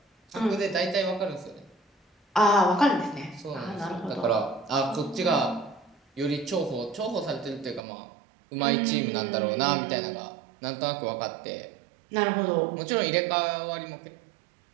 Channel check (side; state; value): left; drops out; at 7.9 s